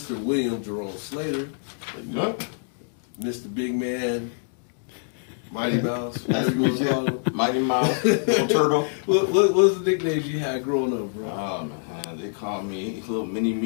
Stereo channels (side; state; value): right; silent; 62 dB below the other